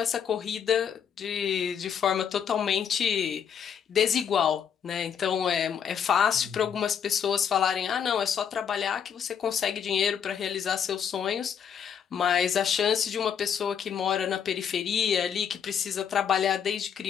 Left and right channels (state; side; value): quieter; right; 7.9 dB